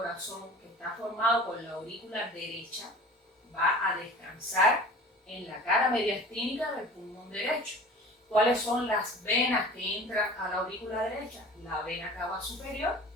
que está formado por la aurícula derecha, va a descansar en la cara mediastínica del pulmón derecho. ¿Cuáles son las venas que entran a la aurícula derecha? La vena cava superior,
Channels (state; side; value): normal; both; correlation 0.42